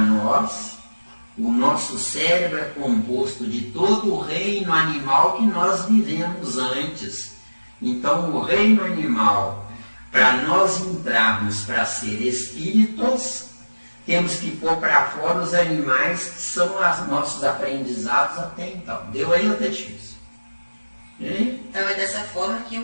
o nosso cérebro é composto de todo o reino animal que nós vivemos antes. Então, o reino animal, para nós entrarmos para ser espíritos, temos que pôr para fora os animais que são os nossos aprendizados até então. Deu aí ou tá difícil? Então é dessa forma que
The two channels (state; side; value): inverted; both; correlation -1.00